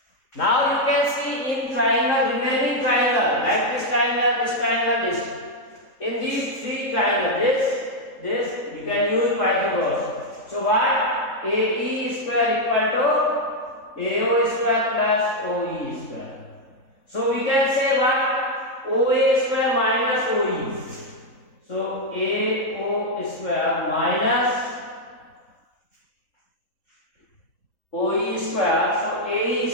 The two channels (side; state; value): right; late; 3.8 ms